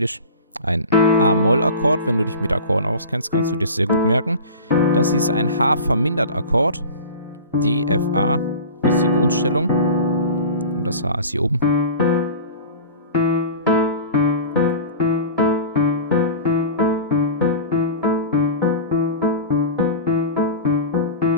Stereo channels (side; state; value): both; inverted; correlation -0.35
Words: ein A-Moll-Akkord. Wenn du dich mit Akkorden auskennst, kannst du dir das sehr gut merken. Das hier ist ein H-Vermindert-Akkord. D, F, A, das ist die Grundstellung. Und das H ist hier oben.